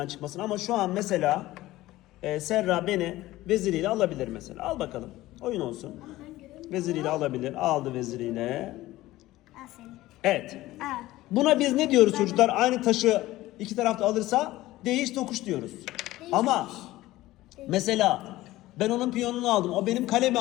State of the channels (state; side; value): quieter; right; 16.9 dB